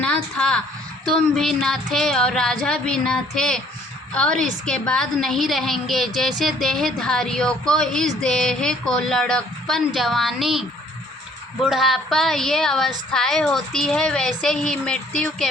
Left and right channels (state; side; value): normal; both; correlation 0.60